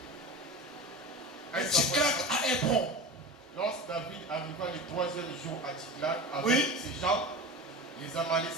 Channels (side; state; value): both; normal; correlation 0.30